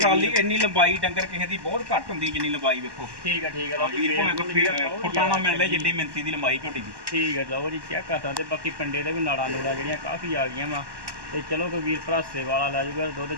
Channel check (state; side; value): late; left; 1.1 ms